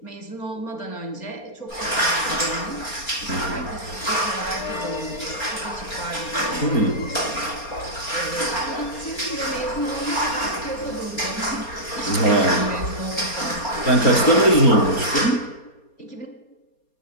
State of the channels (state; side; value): late; right; 4.3 ms